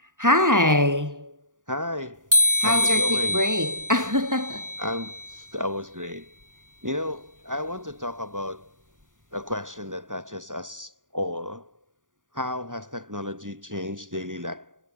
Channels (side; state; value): left; late; 0.88 ms